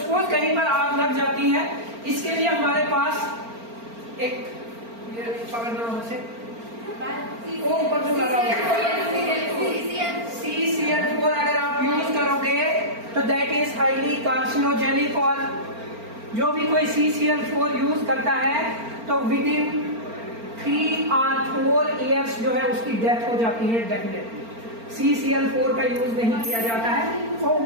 कहीं पर आग लग जाती है, इसके लिए हमारे पास एक ये पकड़ना से वो ऊपर जो लगा CCl4 अगर आप यूज करोगे तो दैट इज हाईली कार्सिनोजेनिक। और जो भी कोई CCl4 यूज करता है तो विद इन 3 or 4 years जो है उसकी डेथ हो जाती है डेफिनेटली। CCl4 का यूज नहीं किया जाता है। वो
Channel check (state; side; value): late; left; 4.4 ms